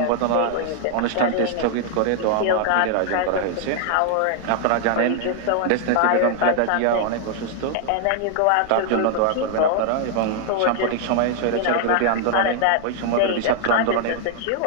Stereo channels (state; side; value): different; both; correlation 0.00